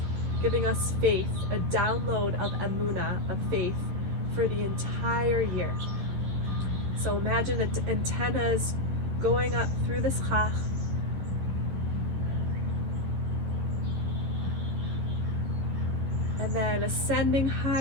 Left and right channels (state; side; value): late; left; 11 ms